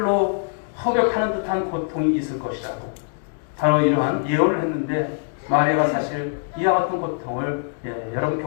허격하는 듯한 고통이 있을 것이라고 바로 이러한 예언을 했는데 마리아가 사실 이와 같은 고통을 여러분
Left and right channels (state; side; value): silent; right; digital silence